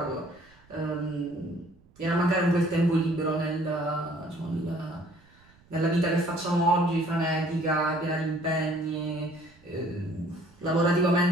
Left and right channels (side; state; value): right; noise; rumble, 29 dB below the sound